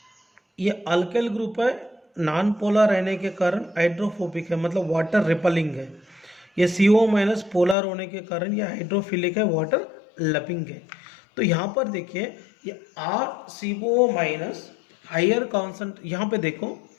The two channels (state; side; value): drops out; right; at 7.8 s